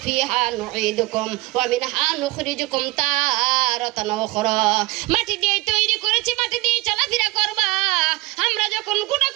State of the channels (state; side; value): quieter; left; 21.3 dB